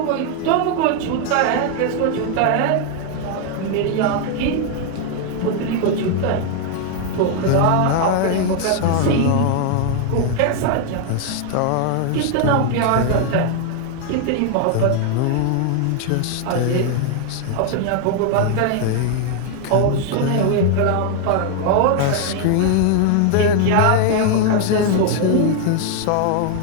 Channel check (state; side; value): different; both; correlation 0.00